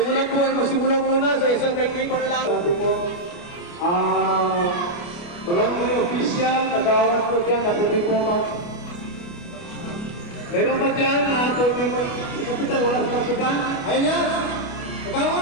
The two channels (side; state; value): right; late; 29 ms